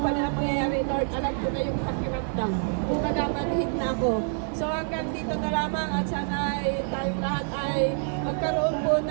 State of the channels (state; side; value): silent; left; 59 dB below the other